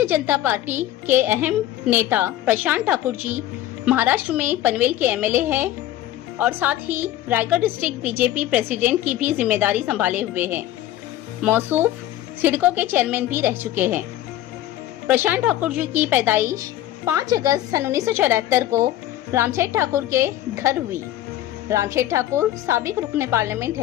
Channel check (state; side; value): quieter; right; 13.6 dB